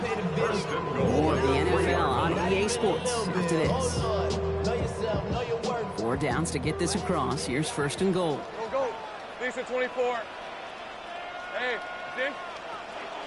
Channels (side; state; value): both; identical; correlation 1.00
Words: More of the NFL on EA Sports after this. 4 downs to get this across. Here's 1st and goal. Go. Decent 24. Hey, Jim.